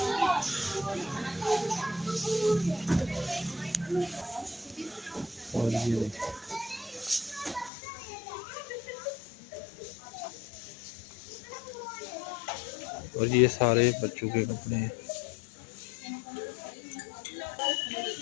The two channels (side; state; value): right; drops out; at 7.7 s